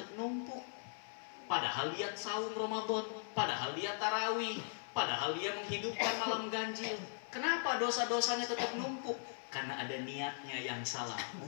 numpuk. Padahal dia saum Ramadan, padahal dia tarawih, padahal dia menghidupkan malam ganjil. Kenapa dosa-dosanya tetap numpuk? Karena ada niatnya yang salah,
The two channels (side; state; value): right; silent; 52 dB below the other